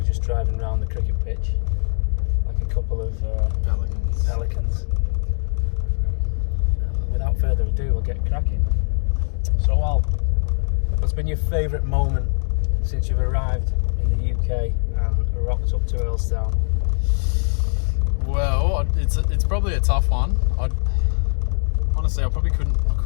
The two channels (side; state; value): right; silent; digital silence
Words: just driving around the cricket pitch like a couple of pelicans. Without further ado, we'll get cracking. So, Al, what's been your favourite moment since you've arrived in the UK and rocked up to Earlstown? Well, it's probably a tough one. Honestly, I